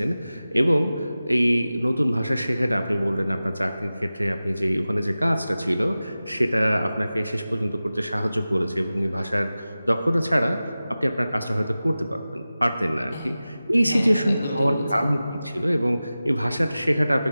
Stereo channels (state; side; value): inverted; both; correlation -0.96